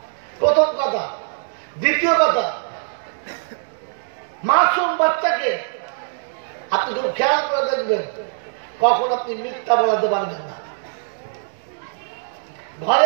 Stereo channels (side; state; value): left; silent; digital silence